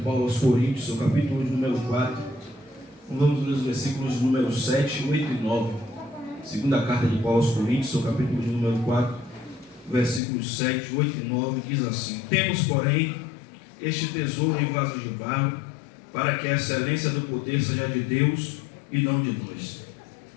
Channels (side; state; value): right; drops out; at 10.2 s